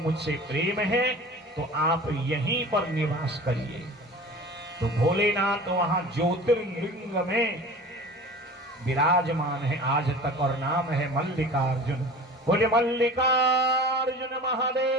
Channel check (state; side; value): normal; both; correlation 0.39